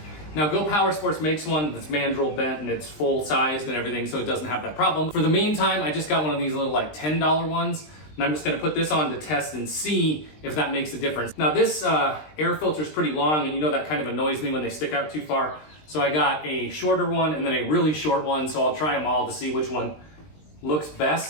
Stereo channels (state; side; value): late; right; 20 ms